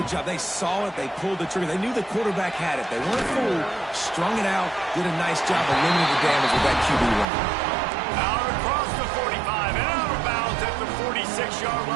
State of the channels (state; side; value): drops out; left; at 7.2 s